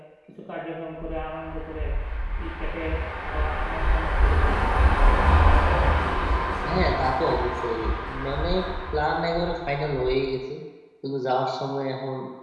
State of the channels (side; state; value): both; identical; correlation 1.00